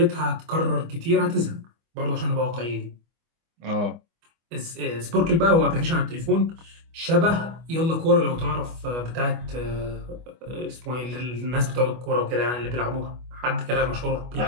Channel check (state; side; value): late; left; 25 ms